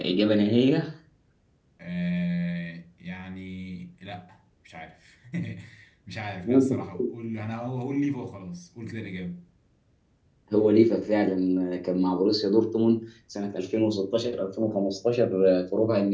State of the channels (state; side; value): identical; both; correlation 1.00